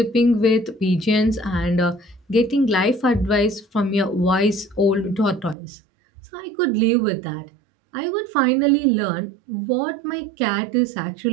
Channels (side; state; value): left; drops out; at 5.6 s